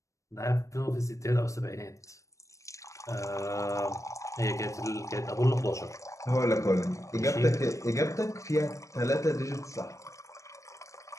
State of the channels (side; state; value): right; late; 0.15 ms